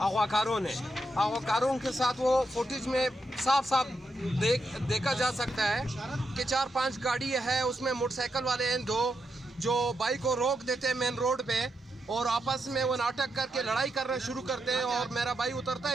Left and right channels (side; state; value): both; normal; correlation 0.83